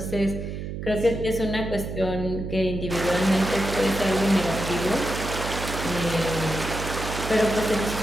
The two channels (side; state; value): right; noise; hum, 6 dB below the sound